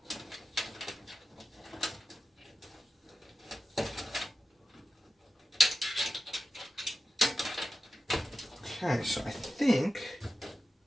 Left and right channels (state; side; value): normal; both; correlation 0.92